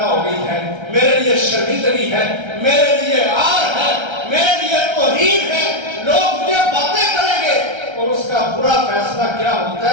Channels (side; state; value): left; late; 1.3 ms